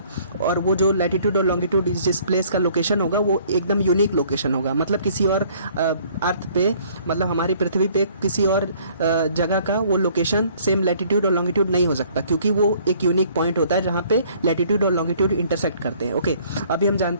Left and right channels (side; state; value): both; inverted; correlation -0.58